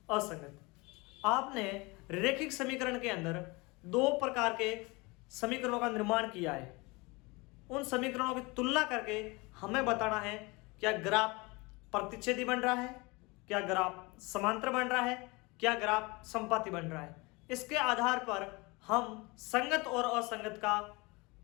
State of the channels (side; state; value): right; quieter; 25.6 dB